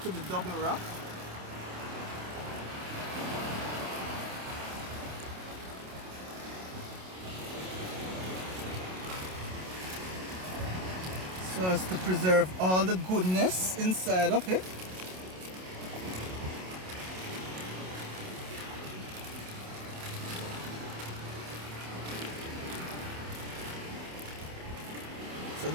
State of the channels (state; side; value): late; left; 27 ms